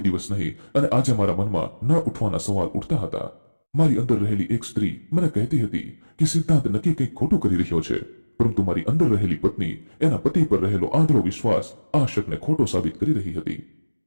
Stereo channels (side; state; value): both; inverted; correlation -1.00